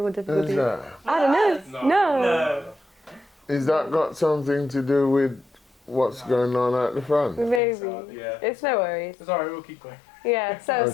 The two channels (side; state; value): right; drops out; at 7.6 s